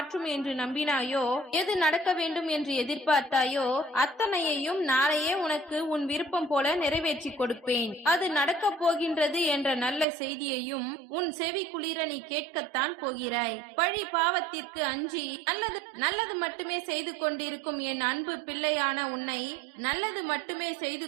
என்று நம்பினாயோ, எது நடக்க வேண்டும் என்று எதிர்பார்த்தாயோ, அத்தனையையும் நாளையே உனக்கு உன் விருப்பம் போல நிறைவேற்றி கொடுப்பேன். அது நடக்கப் போகின்றது என்ற நல்ல செய்தியையும் உன் செவி குளிர நீ கேட்கத்தான் போகிறாய். பழி பாவத்திற்கு அஞ்சி நல்லது மட்டுமே செய்து கொண்டிருக்கும் என் அன்பு பிள்ளையான உன்னை, நல்லது மட்டுமே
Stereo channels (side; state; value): left; drops out; at 10.1 s